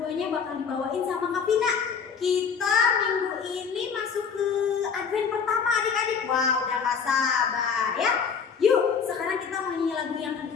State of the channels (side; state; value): right; quieter; 6.3 dB